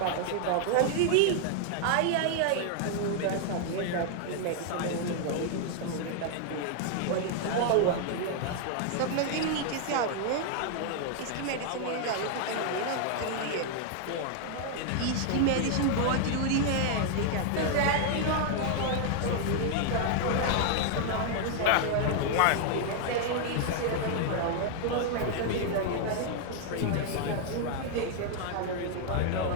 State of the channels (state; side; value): different; both; correlation 0.00